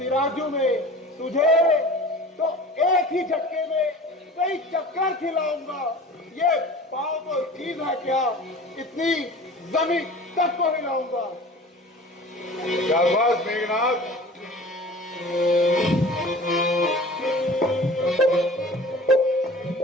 में। तुझे तो एक ही झटके में कई चक्कर खिलाऊंगा। ये पाँव को चीज है क्या, इतनी जमीन तक को हिलाऊंगा। शाबाश मेघनाथ।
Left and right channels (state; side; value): normal; both; correlation 0.41